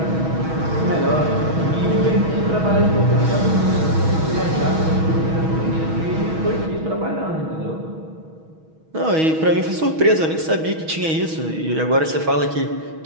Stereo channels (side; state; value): left; late; 6.3 ms